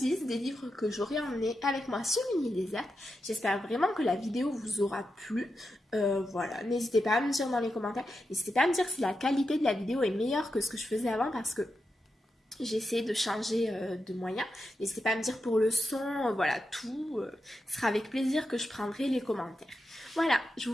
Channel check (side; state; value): both; normal; correlation 0.88